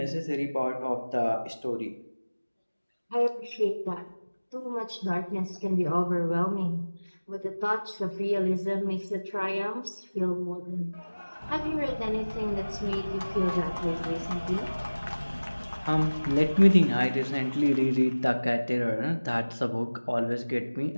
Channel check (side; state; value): both; inverted; correlation -1.00